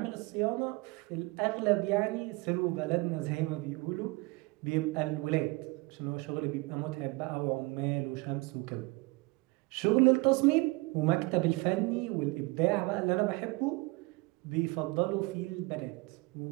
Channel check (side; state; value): left; quieter; 24.9 dB